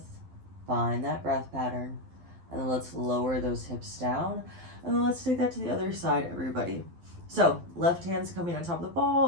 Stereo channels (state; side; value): late; left; 12 ms